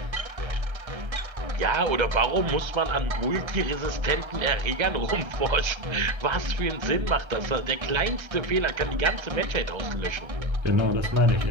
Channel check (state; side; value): late; left; 1.3 ms